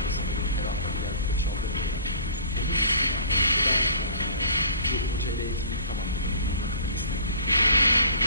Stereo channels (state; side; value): inverted; both; correlation -0.46